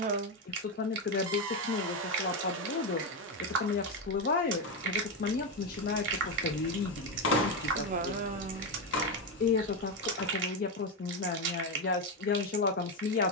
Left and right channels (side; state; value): both; normal; correlation 0.09